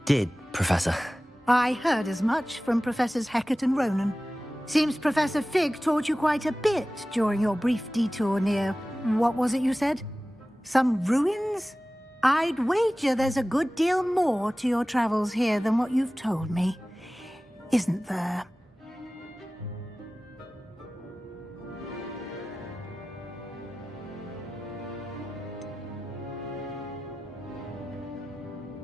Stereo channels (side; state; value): both; normal; correlation 0.96